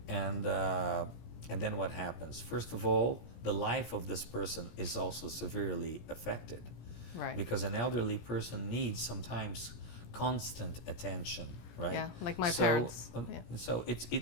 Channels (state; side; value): late; right; 17 ms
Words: And then what happens? First of all, the life of this person is also severely affected. Right. Because an elderly person needs sometimes constant attention, right? Yeah, like my parents. Yeah. So